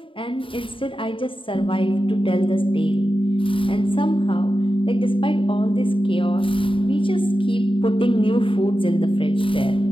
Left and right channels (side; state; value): right; late; 0.25 ms